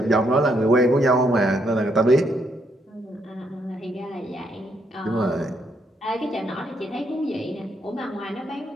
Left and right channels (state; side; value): normal; both; correlation 0.74